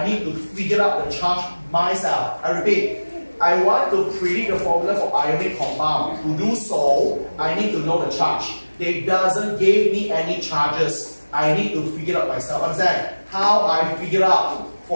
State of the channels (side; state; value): both; inverted; correlation -1.00